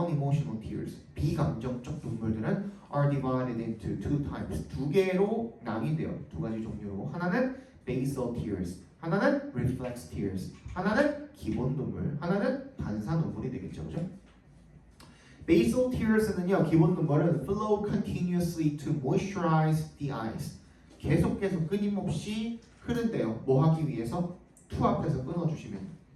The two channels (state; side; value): identical; both; correlation 1.00